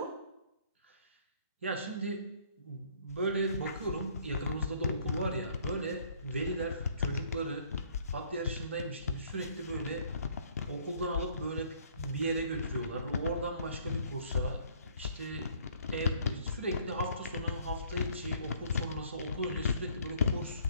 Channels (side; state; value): both; inverted; correlation -0.60